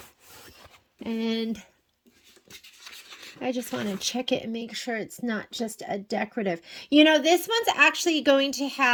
And I just want to check it and make sure it's not just a decorative. You know, this one's actually going to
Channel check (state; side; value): identical; both; correlation 1.00